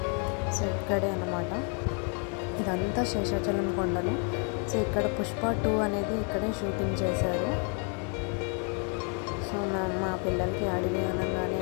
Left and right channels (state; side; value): quieter; right; 40.0 dB